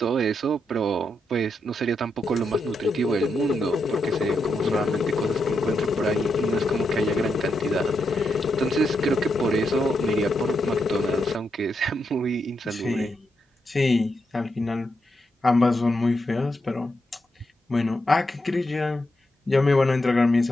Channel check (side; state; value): both; normal; correlation 0.84